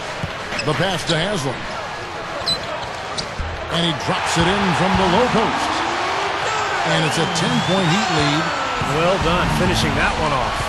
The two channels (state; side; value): identical; both; correlation 1.00